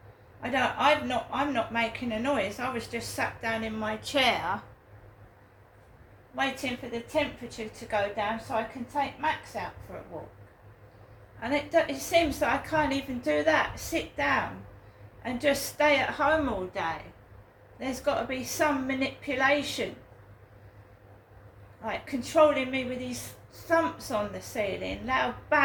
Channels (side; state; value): both; identical; correlation 1.00